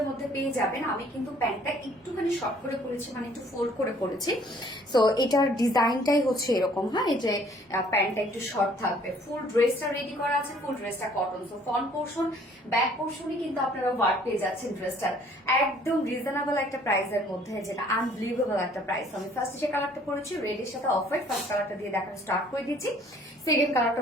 মধ্যে পেয়ে যাবেন। আমি কিন্তু প্যান্টটা একটুখানি শর্ট করে পরেছি, মানে একটু ফোল্ড করে পরেছি। সো এটার ডিজাইনটাই হচ্ছে এরকম, হ্যাঁ, এই যে প্যান্টটা একটু শর্ট থাকবে। ফুল ড্রেসটা রেডি করা আছে, ফুল ড্রেসটা cotton. So front portion back পোর্শনই কিন্তু আপনারা ওয়ার্ক পেয়ে যাচ্ছেন ড্রেসটার একদম রিজনেবল একটা প্রাইসের মধ্যে, যেটা আনবিলিভেবল একটা প্রাইস। আমি ফার্স্ট যে কালারটা পরেছি রেডের সাথে অফ হোয়াইট, ফার্স্ট কালারটা দিয়ে দেখানো স্টার্ট করে দিচ্ছি। সেকেন্ড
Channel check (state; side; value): normal; both; correlation 0.58